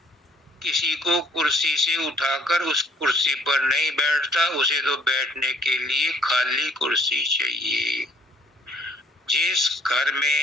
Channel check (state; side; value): normal; both; correlation 0.60